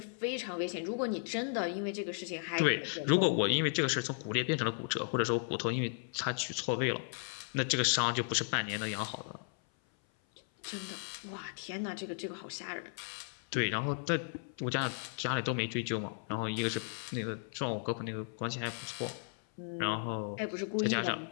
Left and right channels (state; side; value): silent; right; 54 dB below the other